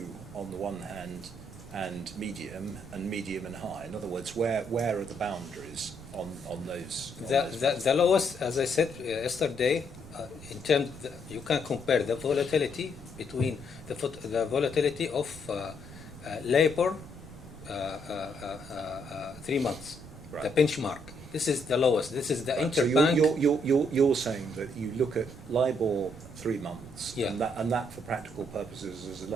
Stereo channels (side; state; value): right; noise; rumble, 17 dB below the sound